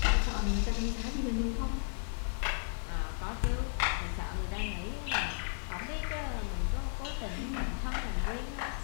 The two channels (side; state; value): right; silent; 55 dB below the other